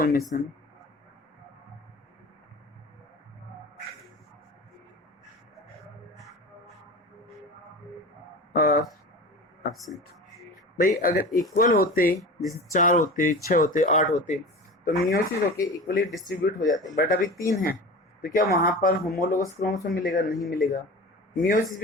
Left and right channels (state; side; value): normal; both; correlation 0.33